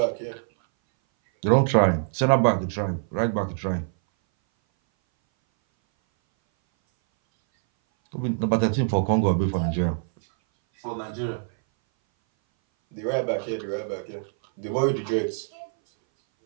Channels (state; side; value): silent; left; 59 dB below the other